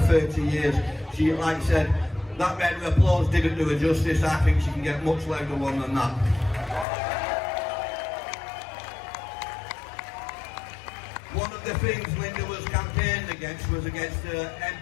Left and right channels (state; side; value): drops out; right; at 6.9 s